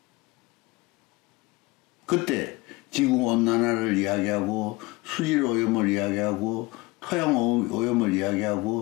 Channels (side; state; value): right; quieter; 22.4 dB